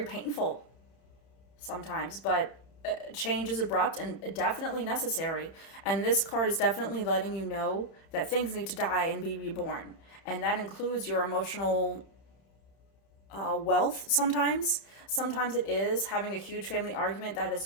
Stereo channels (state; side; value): late; right; 31 ms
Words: painful sometimes, but change is abrupt and definitely necessary. And this card is definitely letting you know that things need to die and be reborn. And that includes your emotional wealth sometimes. Sometimes it is having a huge family argument that has